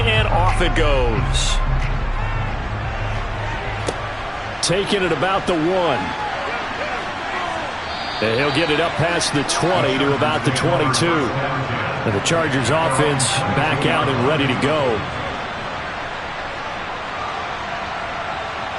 and off it goes. Taking it about the 1. And he'll get it up past the 20 to about the 22. And the Chargers offense back out and ready to go.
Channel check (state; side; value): identical; both; correlation 1.00